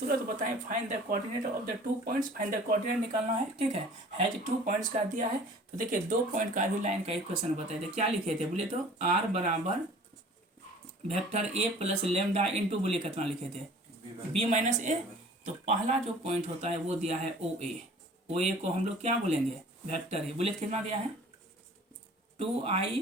बताएं, find the coordinate of the 2 points, find the coordinate निकालना है, ठीक है। हैज 2 पॉइंट्स का दिया है, तो देखिए 2 पॉइंट का भी लाइन का इक्वेशन बताए थे, क्या लिखे थे बोले तो r बराबर vector a plus lambda into, बोले कितना लिखे थे b माइनस ए। तो पहला जो पॉइंट होता है वो दिया है ओ ए, ओ ए को हम लोग क्या बोलेंगे वेक्टर है, बोले कितना दिया है 2i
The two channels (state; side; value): normal; both; correlation 0.48